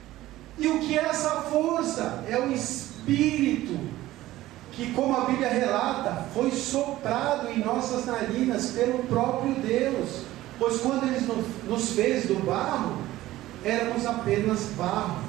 E o que é essa força? É o Espírito, que, como a Bíblia relata, foi soprado em nossas narinas pelo próprio Deus. Pois quando Ele nos fez do barro, éramos apenas barro,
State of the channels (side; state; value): left; quieter; 15.9 dB